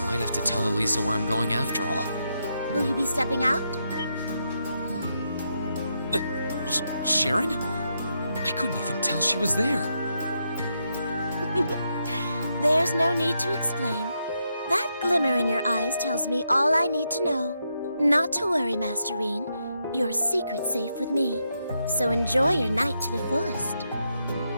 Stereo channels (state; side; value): inverted; both; correlation -0.82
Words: might have to tell Elisa where I'm going after all. Will you be stepping out? Sharon? I couldn't even tell she was there. There's no need to explain. That glimmer in your eyes tells me all I need to know. Not to worry, Master Rean. Your secret's safe with me. So enjoy your night to the fullest.